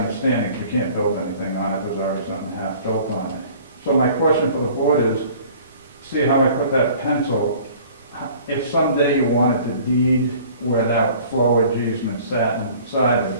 if you can't build anything on it, there's already something half built on it. So my question for the board is, see how I put that pencil, if someday you wanted to deed where that flowage easement sat inside of,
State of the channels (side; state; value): both; inverted; correlation -0.50